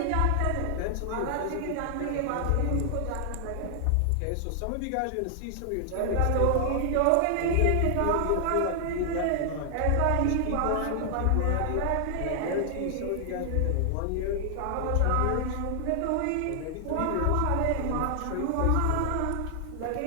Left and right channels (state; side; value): different; both; correlation 0.00